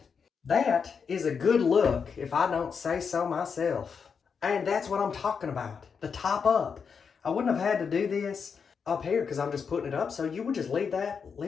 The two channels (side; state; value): right; quieter; 6.1 dB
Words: That is a good look, if I don't say so myself. And that's what I'm talking about. The top up. I wouldn't have had to do this up here because I'm just putting it up. So you would just leave